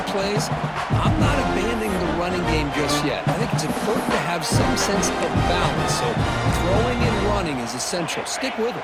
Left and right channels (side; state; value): both; identical; correlation 1.00